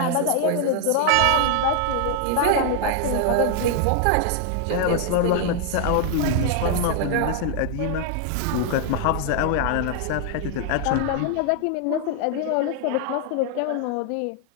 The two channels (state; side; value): different; both; correlation 0.00